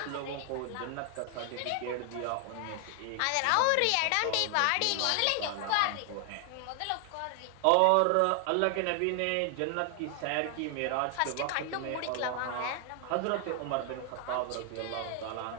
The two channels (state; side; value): different; both; correlation 0.00